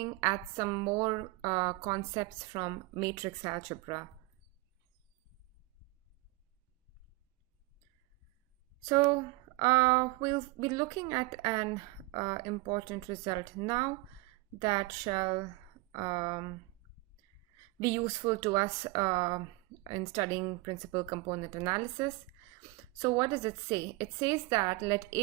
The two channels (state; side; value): quieter; left; 22.2 dB